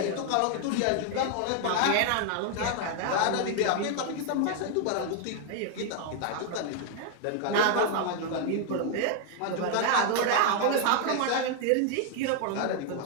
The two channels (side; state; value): both; different; correlation 0.00